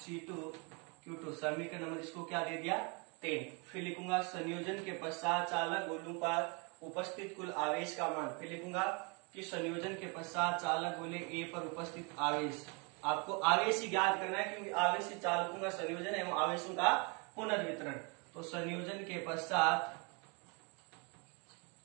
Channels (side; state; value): left; quieter; 32.5 dB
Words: Q2, समीकरण नंबर इसको क्या दे दिया 10। फिर लिखूंगा संयोजन के पश्चात चालक गोलों पर उपस्थित कुल आवेश का मान। फिर लिखूंगा कि संयोजन के पश्चात चालक गोले A पर उपस्थित आवेश, आपको आवेश ही ज्ञात करना है क्योंकि आवेश ही चालकों का संयोजन एवं आवेशों का पुनर्वितरण। तो संयोजन के पश्चात